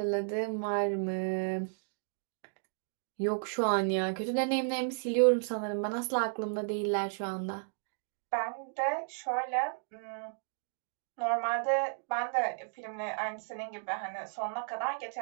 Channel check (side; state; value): left; silent; digital silence